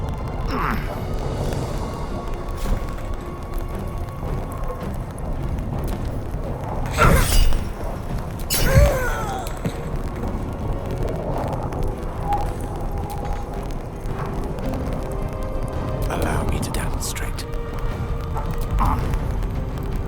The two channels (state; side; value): identical; both; correlation 1.00